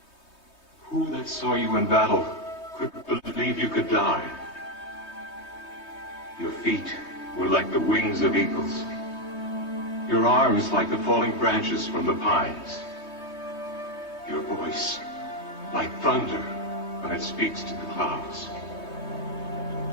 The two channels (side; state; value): right; late; 3.2 ms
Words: Who that saw you in battle could believe you could die? Your feet were like the wings of eagles, your arms like the falling branches from the pines, your voice like thunder when it speaks to the clouds.